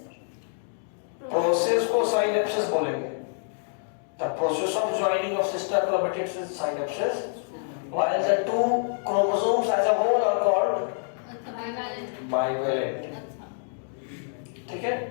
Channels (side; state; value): right; silent; digital silence